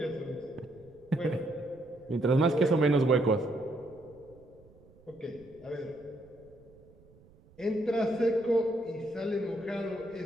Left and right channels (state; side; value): noise; right; rumble, 26 dB below the sound